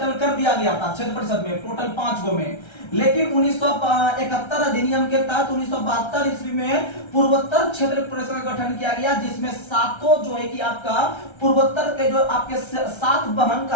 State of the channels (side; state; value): right; late; 1.3 ms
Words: कर दिया गया था क्षेत्र परिषद में, टोटल 5 गो में। लेकिन 1971 अधिनियम के तहत 1972 ईस्वी में पूर्वोत्तर क्षेत्र परिषद का गठन किया गया, जिसमें 7 जो है कि आपका पूर्वोत्तर के जो आपके 7 बहन